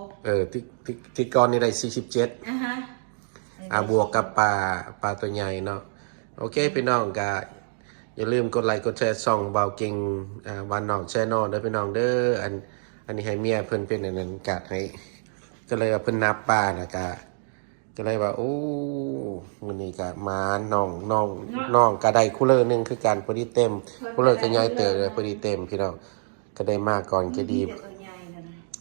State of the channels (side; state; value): left; silent; digital silence